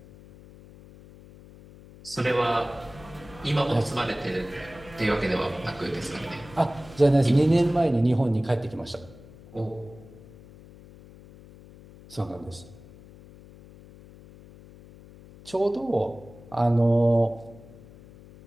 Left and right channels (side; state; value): left; noise; hum, 21 dB below the sound